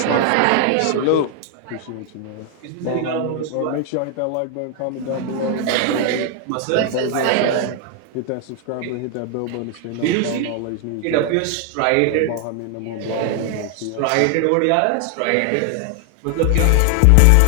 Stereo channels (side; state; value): both; different; correlation 0.00